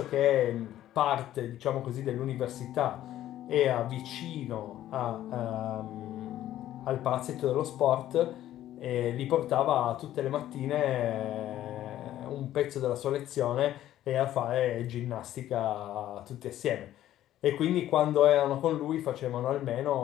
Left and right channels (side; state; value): right; quieter; 12.9 dB